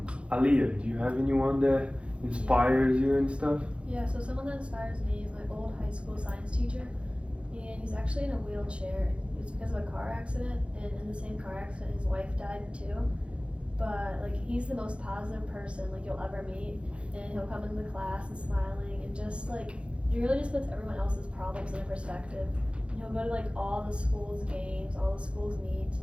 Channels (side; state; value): left; late; 0.059 ms